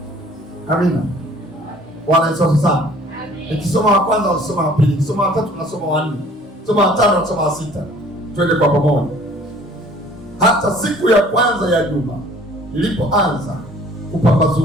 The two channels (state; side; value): normal; both; correlation 0.53